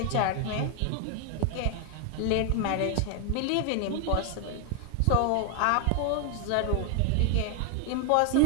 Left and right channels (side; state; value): both; different; correlation 0.00